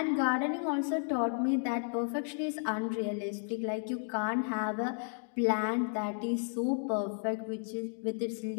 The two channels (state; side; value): silent; right; 56 dB below the other